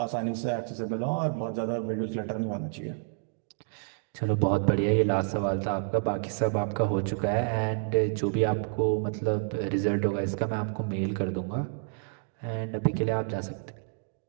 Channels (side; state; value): left; silent; 58 dB below the other